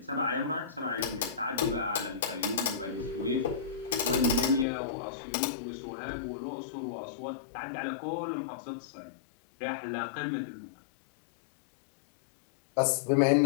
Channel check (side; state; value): right; drops out; at 4.7 s